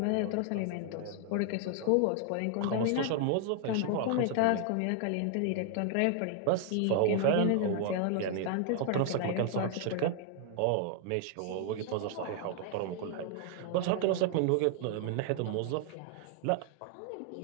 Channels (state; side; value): different; both; correlation 0.00